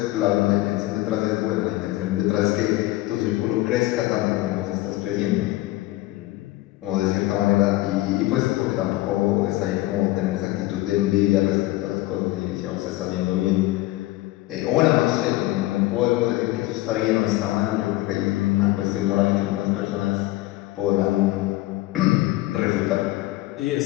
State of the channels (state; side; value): quieter; right; 17.9 dB